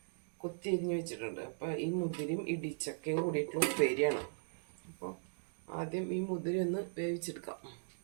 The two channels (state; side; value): silent; left; digital silence